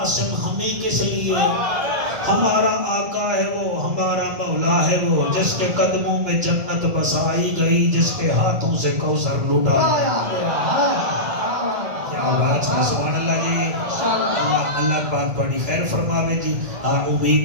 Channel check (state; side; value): late; left; 1.7 ms